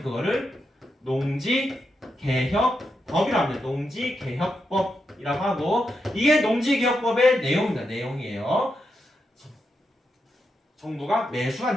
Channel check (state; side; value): normal; both; correlation 0.85